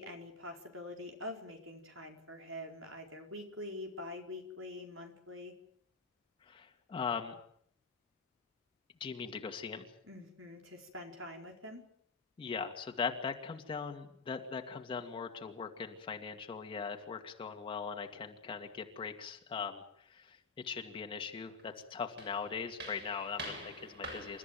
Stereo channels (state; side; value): quieter; right; 4.5 dB